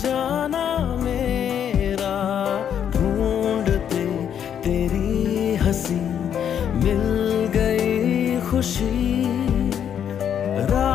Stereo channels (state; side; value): quieter; right; 8.9 dB